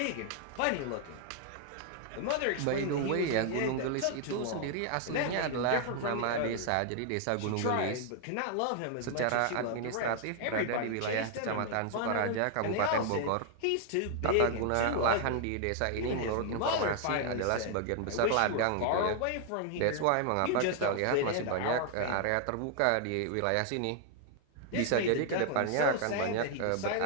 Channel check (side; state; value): both; different; correlation 0.00